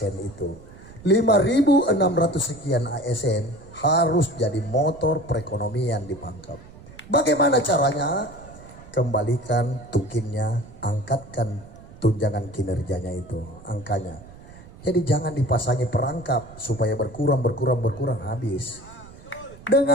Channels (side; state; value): right; noise; rumble, 19 dB below the sound